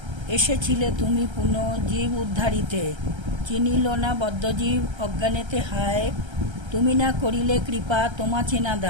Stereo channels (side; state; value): left; late; 1.3 ms